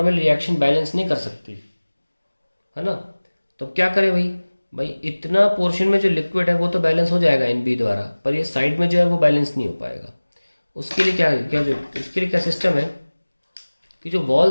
रिएक्शन बैलेंस नहीं कर सकती, है ना. तो क्या करें भाई इतना पोर्शन में जो लिक्विड है वो तो बैलेंस हो जाएगा एन बी द्वारा, पर ये साइड में जो है वो बैलेंस नहीं हो पाएगा. उसके लिए उसके लिए क्या सिस्टम है कि जो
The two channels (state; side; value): inverted; both; correlation -1.00